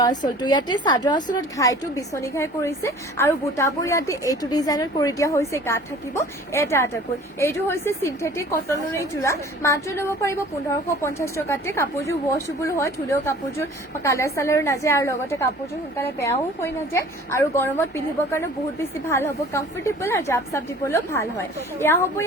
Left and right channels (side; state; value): both; normal; correlation 0.47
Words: আঁচলটো ইয়াতে চাদৰ আঁচলত ঘাইটো বিচনী ঘাই কৰিছে আৰু বুটাবোৰ ইয়াতে এইটো ডিজাইনৰ কৰি দিয়া হৈছে গাত থাকিব এটাকৈ এইটো হৈছে চিন্থেটিক কটনৰ জোৰা মাত্ৰ ল'ব পাৰিব 1550 টকাতে কাপোৰযোৰ ৱাশেবল হয় ধুলেও কাপোৰযোৰ কালাৰ চালাৰ নাযায় আৰু লগতে কাপোৰযোৰ সোনকালে বেয়াও হৈ নাযায় আৰু গৰমত পিন্ধিবৰ কাৰণে বহুত বেছি ভাল হ'ব কমফৰ্টেবল আৰু জাপ চাপ দিবলৈও ভাল হয় এয়া হ'ব